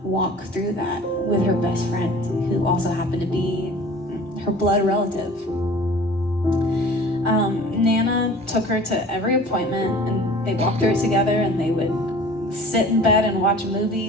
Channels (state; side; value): normal; both; correlation 0.45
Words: walk through that with her best friend, who also happened to be her blood relative. Nana took her to every appointment, and they walked through it together, and they would sit in bed and watch